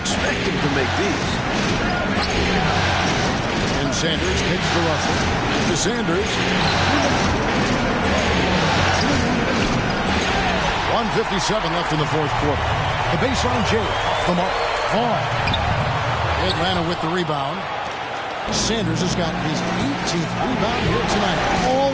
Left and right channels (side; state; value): both; identical; correlation 1.00